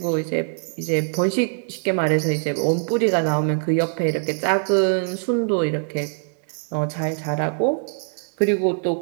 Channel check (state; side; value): silent; left; 64 dB below the other